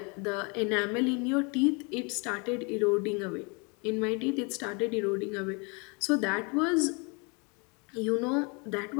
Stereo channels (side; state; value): right; quieter; 32.0 dB